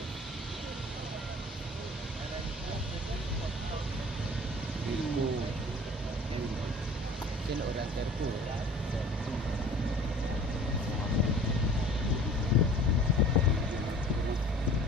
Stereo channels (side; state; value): both; normal; correlation 0.47